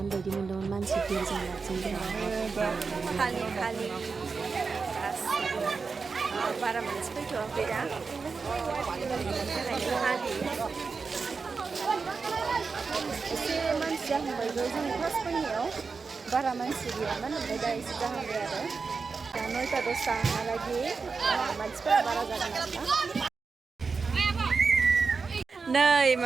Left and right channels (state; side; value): quieter; left; 4.8 dB